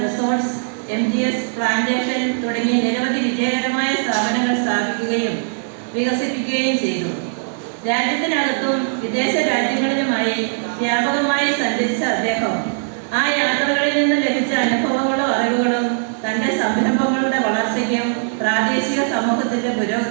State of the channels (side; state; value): left; silent; digital silence